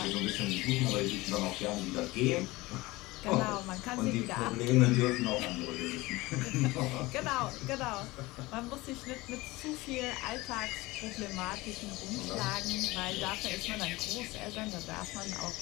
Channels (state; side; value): quieter; right; 20.7 dB